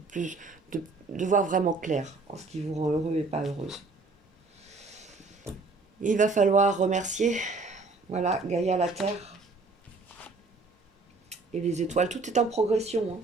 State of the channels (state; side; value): quieter; left; 3.8 dB